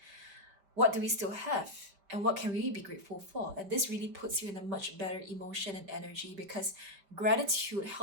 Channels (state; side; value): late; left; 5.1 ms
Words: what do we still have? And what can we be grateful for? And this really puts you in a much better emotion and energy, because gratitude